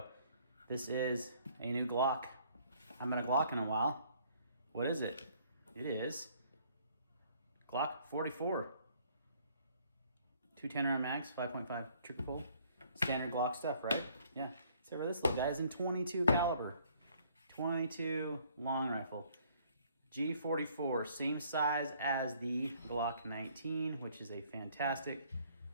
This is a new Glock. I haven't had a Glock in a while. What is it? It is Glock 44. 210 round mags, 5.5 trigger pull. Standard Glock stuff, right? Yeah. Except for this little guy is in 22 caliber. 22 long rifle. G44, same size as the Glock 19, which is a fantastic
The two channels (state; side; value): inverted; both; correlation -0.62